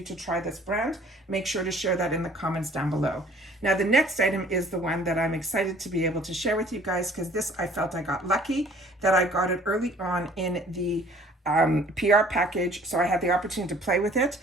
to try this brand, make sure to share that in the comments down below. Now, the next item is the one that I'm excited to be able to share with you guys, because this, I felt I got lucky that I got it early on in the PR package, so I had the opportunity to play with it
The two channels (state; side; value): normal; both; correlation 0.54